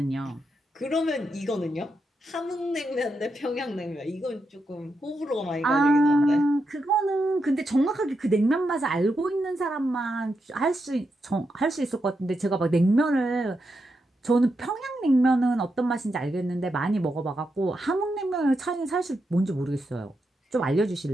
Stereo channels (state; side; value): normal; both; correlation 0.85